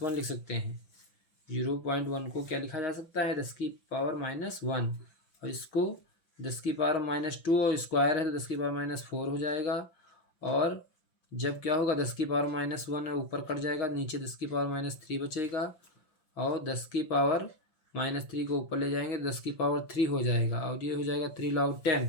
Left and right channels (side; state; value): right; late; 5.8 ms